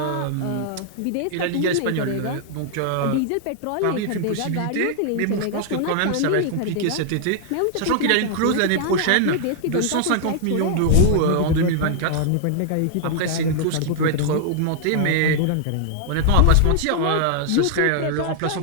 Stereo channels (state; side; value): different; both; correlation -0.01